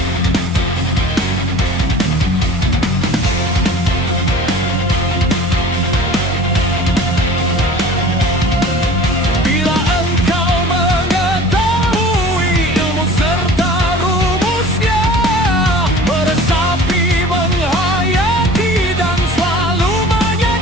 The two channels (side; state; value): both; normal; correlation 0.44